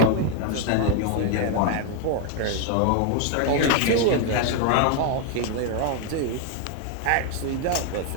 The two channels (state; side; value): different; both; correlation 0.01